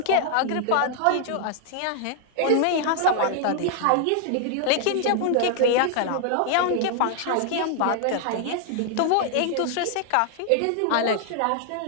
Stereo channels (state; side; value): different; both; correlation 0.00